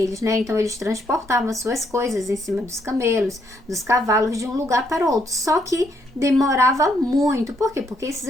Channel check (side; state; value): both; normal; correlation 0.73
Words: né? Então eles transportavam suas coisas em cima dos camelos, dos cavalos, de um lugar para o outro. Só que demorava muito. Por quê? Porque esses